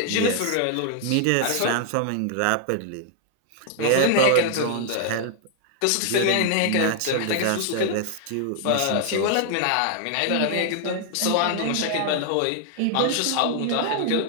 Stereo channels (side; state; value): both; different; correlation 0.00